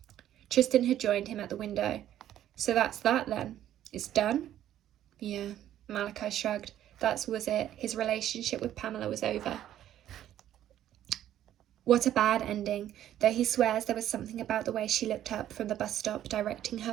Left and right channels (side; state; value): left; quieter; 11.8 dB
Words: Tristan had joined him at the window. "So that's that then? It's done?" "Yeah," Malachi shrugged. That was it. His relationship with Pamela was over. What a bad ending, though he swears there was something about the way she looked up from the bus stop, directing her